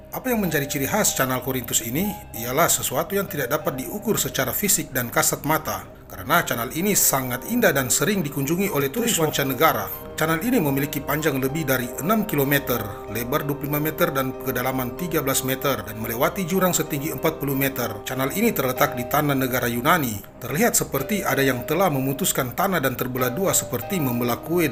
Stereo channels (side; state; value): both; identical; correlation 1.00